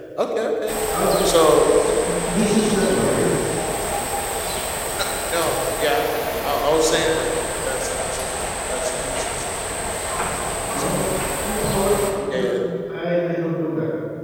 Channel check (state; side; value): identical; both; correlation 1.00